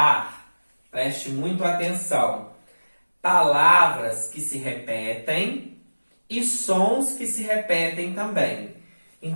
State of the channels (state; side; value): inverted; both; correlation -1.00